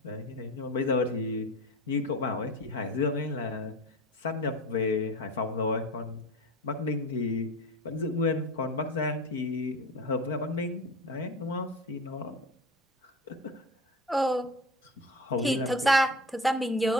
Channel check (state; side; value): normal; both; correlation 0.31